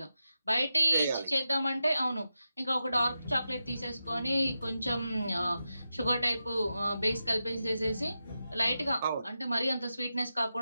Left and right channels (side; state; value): both; inverted; correlation -0.90